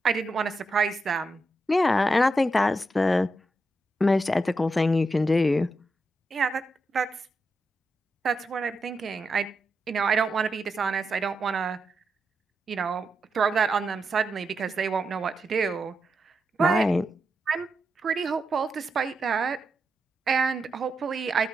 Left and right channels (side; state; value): both; normal; correlation 0.85